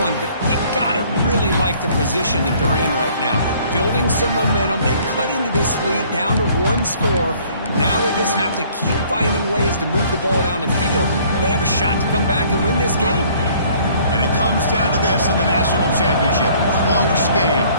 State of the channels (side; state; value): both; inverted; correlation -0.57